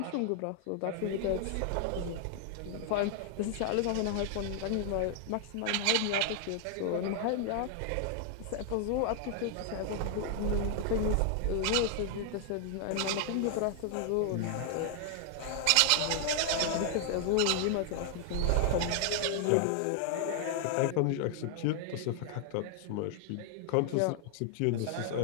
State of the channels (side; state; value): both; different; correlation 0.00